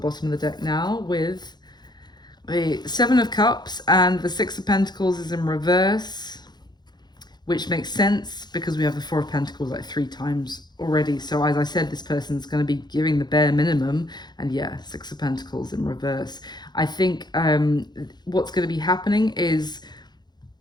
of the deck now, with the Seven of Cups, and the Six of Pentacles is in reverse, which makes sense because we have the Four of Pentacles like 3 times already. So as I said, this person's going to be giving the bare minimum. And yeah, Six of Pentacles in reverse. I think what's going to be happening is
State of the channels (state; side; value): late; right; 0.21 ms